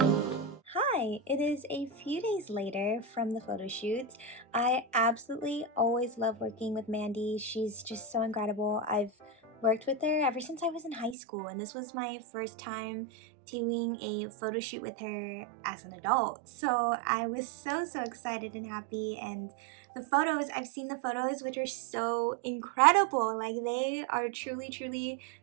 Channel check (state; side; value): drops out; left; at 11.2 s